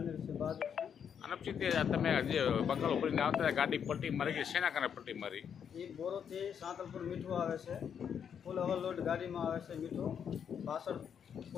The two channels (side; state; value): right; quieter; 7.9 dB